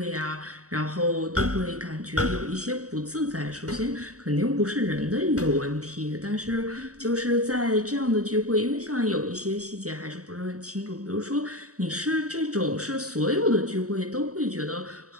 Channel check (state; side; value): late; left; 0.66 ms